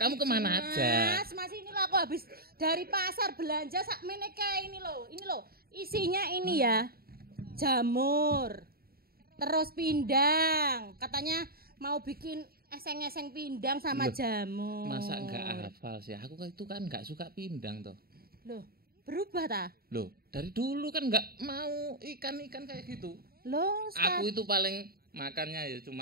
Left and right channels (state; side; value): late; left; 0.44 ms